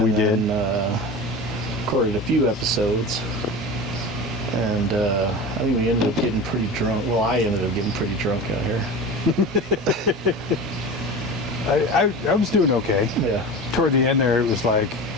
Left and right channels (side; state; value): both; normal; correlation 0.31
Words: We did. Recorded a few episodes. And I think we ended up getting pretty drunk. Well, I ended up getting pretty drunk out here. I was doing okay. Yeah. Toward the end there, it was like,